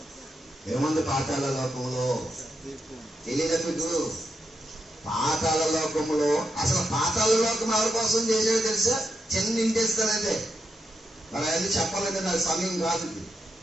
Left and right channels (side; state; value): both; normal; correlation 0.84